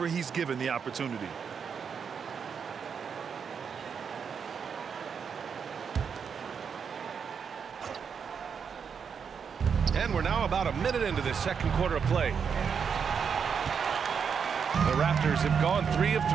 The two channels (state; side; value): quieter; left; 6.6 dB